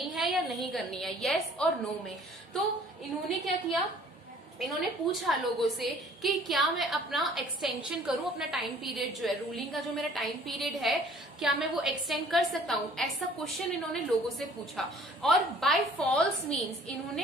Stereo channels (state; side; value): normal; both; correlation 0.54